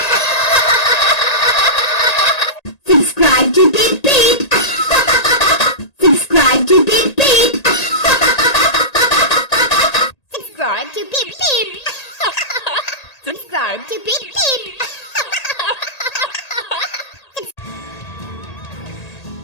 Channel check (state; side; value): late; right; 1.8 ms